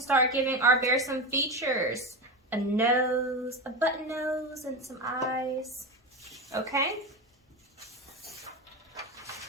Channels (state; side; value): normal; both; correlation 0.20